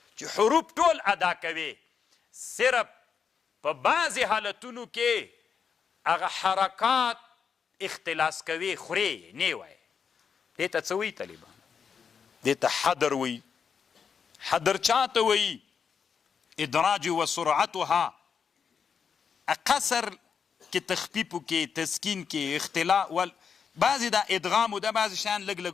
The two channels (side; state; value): right; quieter; 6.6 dB